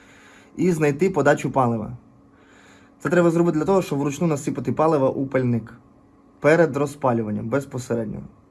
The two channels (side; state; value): both; identical; correlation 1.00